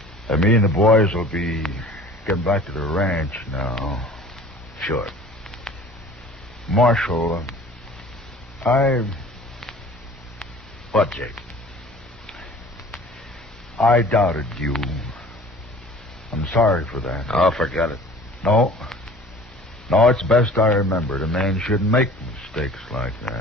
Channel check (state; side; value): normal; both; correlation 0.46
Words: me and the boys will be getting back to the ranch now. Sure. Marshal, What, Jake? I doubted you. I'm sorry for that. Oh, forget it. No, it's best I remembered. A man shouldn't make mistakes like